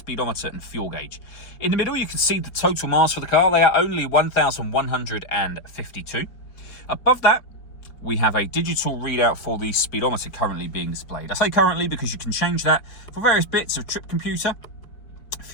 and fuel gauge. In the middle, you can see the total miles for the car. They are only 1,152. Above that, we have a digital readout for the speedometer currently being displayed. I say currently because you can change that for various bits of trip computer,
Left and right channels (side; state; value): right; late; 4.6 ms